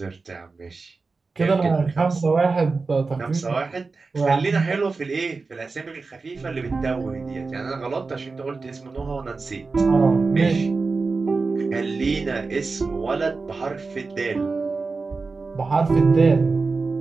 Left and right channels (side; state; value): left; quieter; 4.1 dB